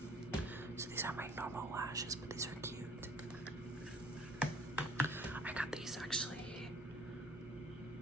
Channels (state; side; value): normal; both; correlation 0.55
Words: So these are my normal lashes, but these are cute. I got these actually,